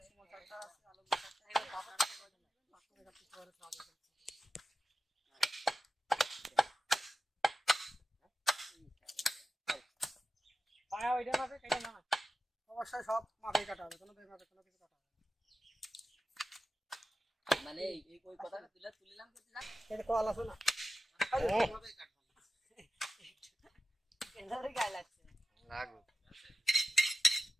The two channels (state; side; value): normal; both; correlation 0.92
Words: সুমন সরকার আছে, আলমগীর সরকার, এগুলো বাবা পায়া ওইটা মাপে কেটে না, অবশ্যই সব মাপে কাটা হবে, কোনো বেমাপে কোনো কিছু কাটা হবে মানে এই কই কথাটা তুলিলাম কি জান এটা কল আছে না এইভাবে কাটবো কেন্দ্রে গায় লাগছে লাগু